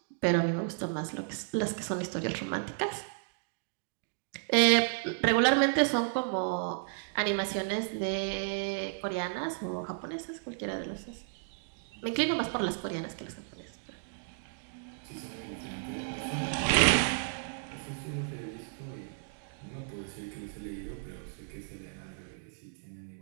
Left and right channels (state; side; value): silent; left; digital silence